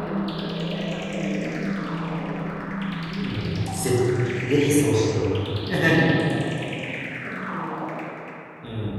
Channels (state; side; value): identical; both; correlation 1.00